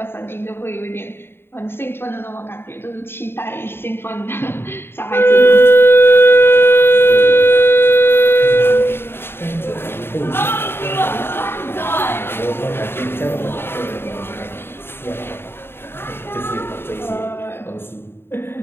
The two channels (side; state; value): right; late; 0.11 ms